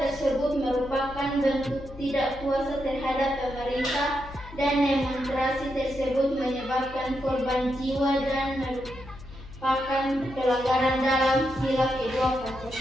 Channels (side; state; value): left; noise; hum, 16 dB below the sound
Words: merupakan bentuk tidak puasa terhadap pemerintah dan demonstrasi tersebut menyebabkan korban jiwa dan merupakan pelanggaran dalam sila kedua